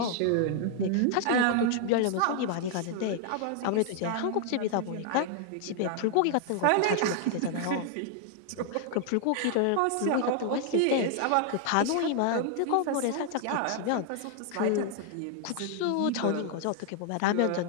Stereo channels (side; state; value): both; different; correlation 0.00